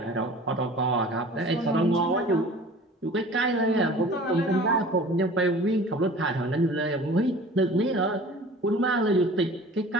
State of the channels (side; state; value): both; normal; correlation 0.44